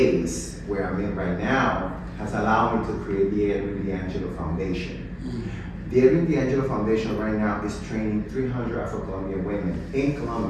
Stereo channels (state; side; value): identical; both; correlation 1.00